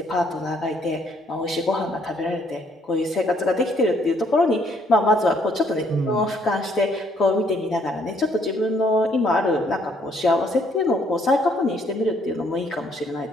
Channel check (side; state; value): both; normal; correlation 0.67